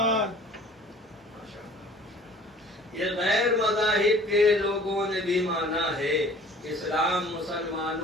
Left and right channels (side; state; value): both; normal; correlation 0.49